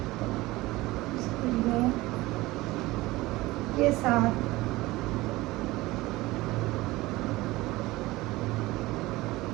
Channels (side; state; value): left; quieter; 19.5 dB